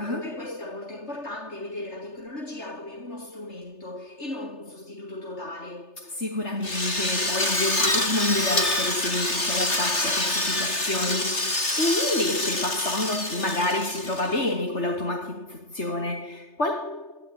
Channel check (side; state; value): right; late; 3.3 ms